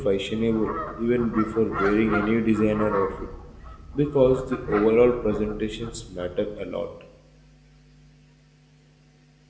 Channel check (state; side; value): identical; both; correlation 1.00